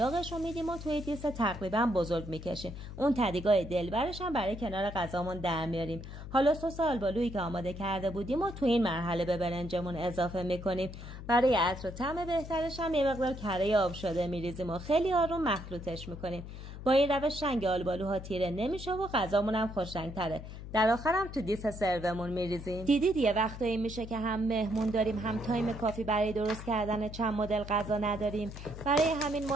رو میدیم و توی دیس تقریبا بزرگ میکشیم. اون تدیگای دلبرش هم برای کنار غذامون در میاریم. حالا سس آلبالویی که آماده کرده بودیم و تو این مرحله به برنجمون اضافه میکنیم. برای عطر و طعم بهترش هم یه مقدار کره آب شده میریزیم و خیلی آروم مخلوطش میکنیم. با این روش رنگ آلبالوها تیره نمیشه و غذامون هم خوش رنگ‌تره. در آخر هم تو دیس سرومون میریزیم. دیدید یه وقتایی میشه که هم مهمون داریم هم تایم کافی برای درست کردن چند مدل غذا نداریم. برای همین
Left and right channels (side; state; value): left; noise; hum, 11 dB below the sound